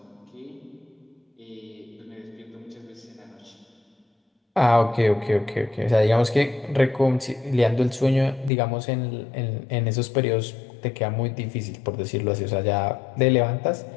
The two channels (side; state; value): right; drops out; at 8.5 s